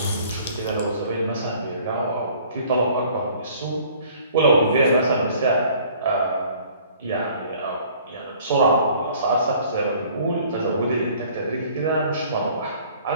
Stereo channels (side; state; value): both; inverted; correlation -0.54